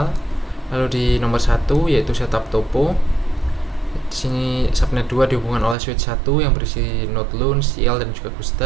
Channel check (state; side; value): drops out; left; at 5.8 s